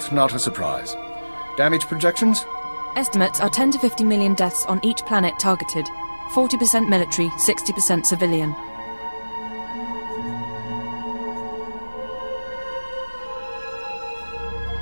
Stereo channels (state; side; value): inverted; both; correlation -1.00